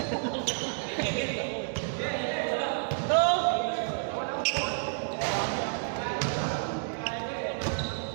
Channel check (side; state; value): left; silent; digital silence